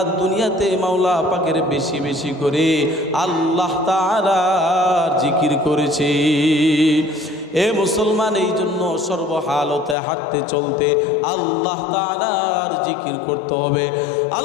দুনিয়াতে মাওলা পাকের বেশি বেশি করে আল্লাহ তাআলার জিকির করেছে। এ মুসলমান, এই জন্য সর্বহালতে হাঁটতে চলতে আল্লাহ তাআলার জিকির করতে হবে।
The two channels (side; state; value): right; drops out; at 10.0 s